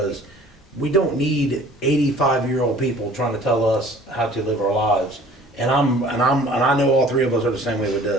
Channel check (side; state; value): both; normal; correlation 0.50